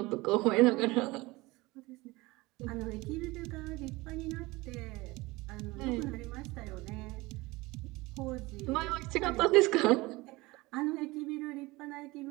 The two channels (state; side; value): quieter; left; 21.7 dB